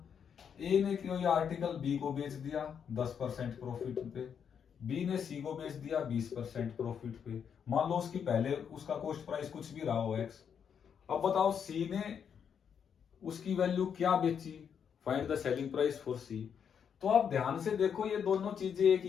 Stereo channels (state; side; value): quieter; right; 7.6 dB